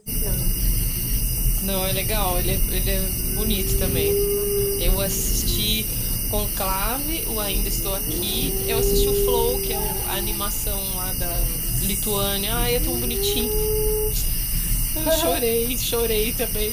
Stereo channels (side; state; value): both; identical; correlation 1.00